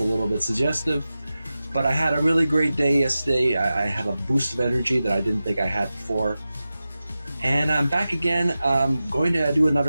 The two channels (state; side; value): inverted; both; correlation -0.94